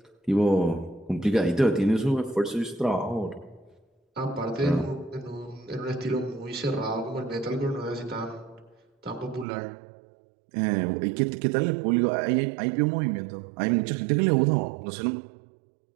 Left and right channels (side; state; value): left; drops out; at 9.5 s